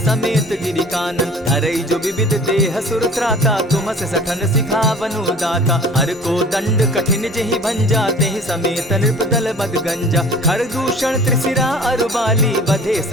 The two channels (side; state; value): both; normal; correlation 0.46